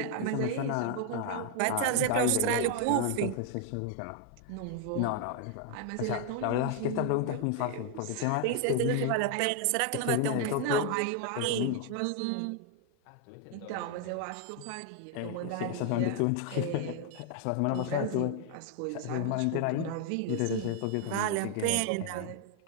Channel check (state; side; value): different; both; correlation 0.00